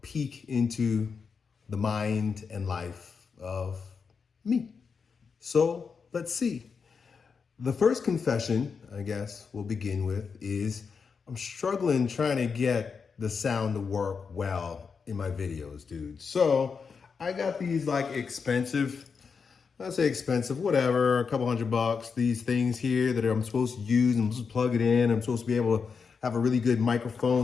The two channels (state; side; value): quieter; right; 5.6 dB